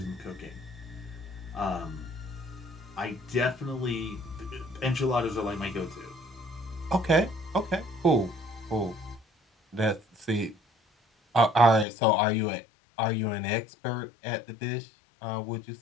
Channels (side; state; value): right; drops out; at 11.9 s